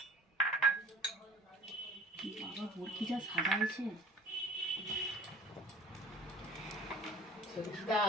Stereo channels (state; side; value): normal; both; correlation 0.45